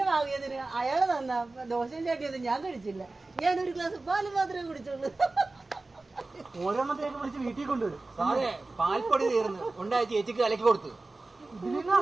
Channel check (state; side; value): quieter; left; 3.3 dB